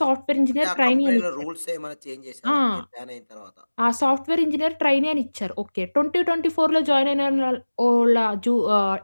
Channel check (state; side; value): inverted; both; correlation -1.00